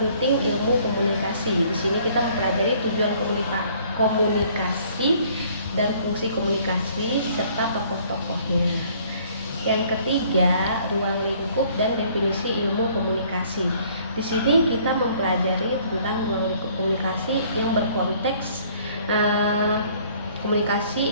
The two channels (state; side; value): inverted; both; correlation -0.59